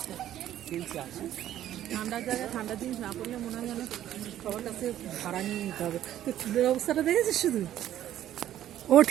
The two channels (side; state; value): left; quieter; 12.1 dB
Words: ঠান্ডার জায়গায় ঠান্ডার জিনিস না পড়লে মনে হয় যেন সবার কাছে ভাড়া নিয়ে নিতে হবে। তো চুলের অবস্থাটা দেখেছিস শুধু? ও